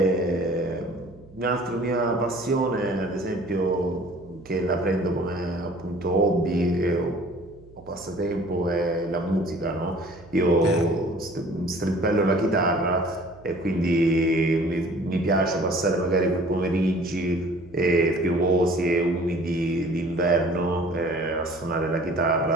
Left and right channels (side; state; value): right; noise; hum, 23 dB below the sound